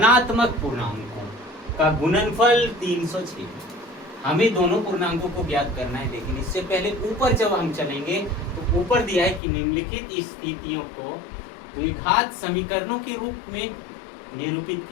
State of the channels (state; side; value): drops out; right; at 9.4 s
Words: पूर्णांकों का गुणनफल 306। हमें दोनों पूर्णांकों को ज्ञात करना है, लेकिन इससे पहले ऊपर जब हम चलेंगे तो ऊपर दिया है कि निम्नलिखित स्थितियों को द्विघात समीकरणों के रूप में निरूपित